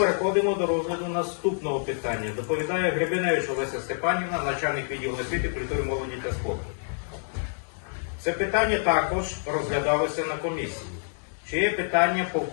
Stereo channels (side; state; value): right; silent; digital silence